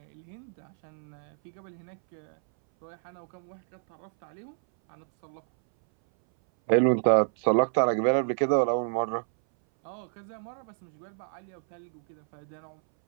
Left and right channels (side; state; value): left; silent; 58 dB below the other